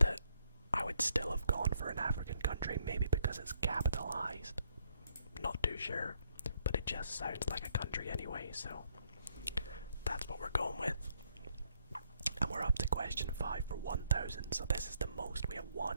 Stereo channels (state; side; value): inverted; both; correlation -0.71